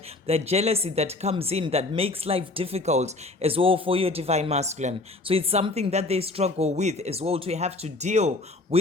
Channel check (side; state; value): right; quieter; 3.0 dB